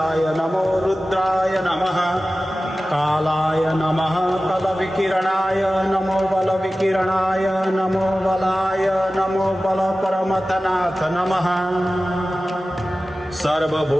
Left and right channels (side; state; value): both; normal; correlation 0.96